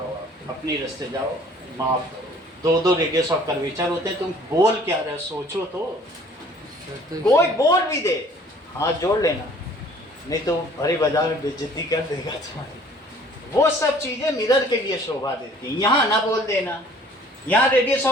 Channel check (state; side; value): normal; both; correlation 0.54